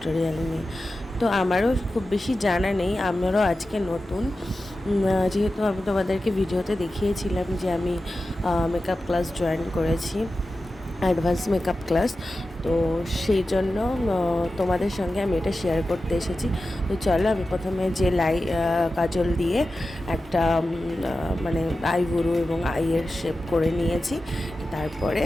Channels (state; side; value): normal; both; correlation 0.93